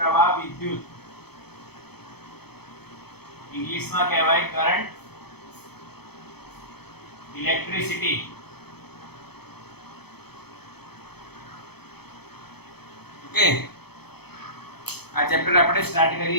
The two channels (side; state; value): right; late; 0.97 ms